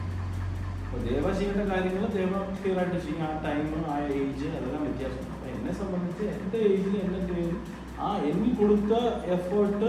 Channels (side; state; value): both; identical; correlation 1.00